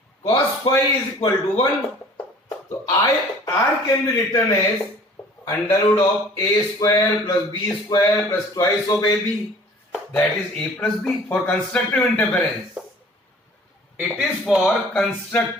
cos phi is equal to 1. So R can be written as under root of a square plus b square plus twice of ab. That is a plus b for constructive interference. It is for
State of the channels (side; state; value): both; normal; correlation 0.50